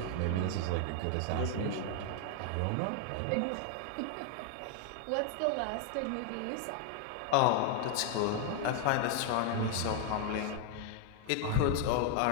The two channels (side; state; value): both; different; correlation 0.00